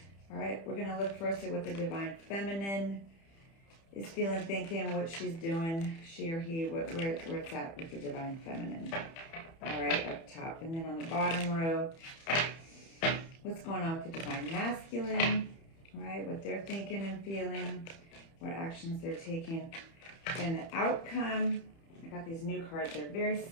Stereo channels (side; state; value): right; late; 30 ms